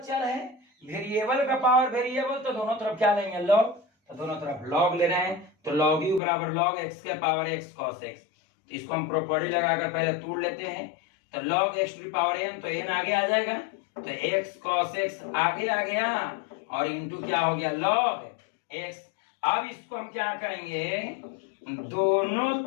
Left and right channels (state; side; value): drops out; right; at 6.2 s